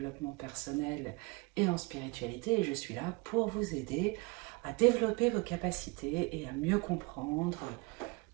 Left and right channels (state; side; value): quieter; left; 26.6 dB